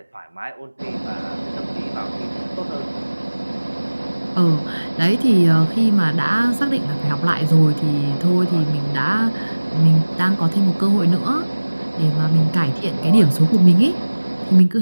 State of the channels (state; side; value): inverted; both; correlation -1.00